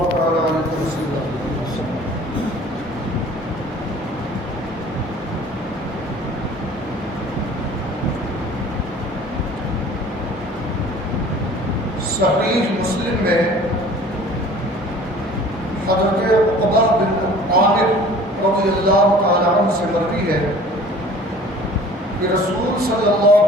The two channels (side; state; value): both; normal; correlation 0.47